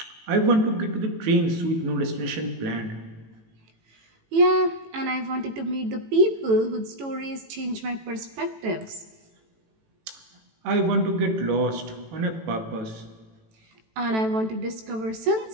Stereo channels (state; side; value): late; left; 18 ms